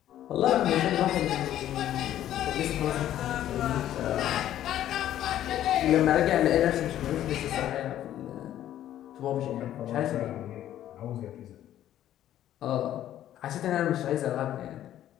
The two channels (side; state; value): right; quieter; 12.1 dB